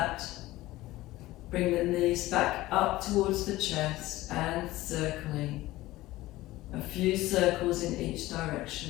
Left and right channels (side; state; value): right; quieter; 17.5 dB